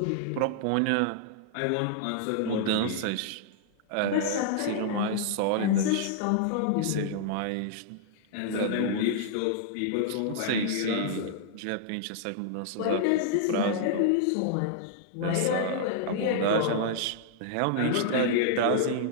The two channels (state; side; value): different; both; correlation -0.01